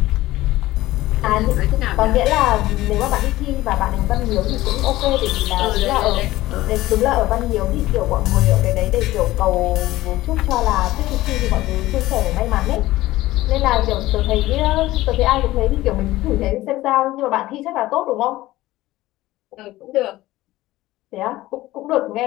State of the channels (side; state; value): right; quieter; 16.9 dB